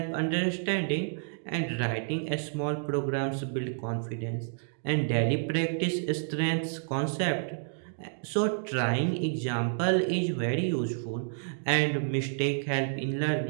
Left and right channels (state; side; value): silent; left; digital silence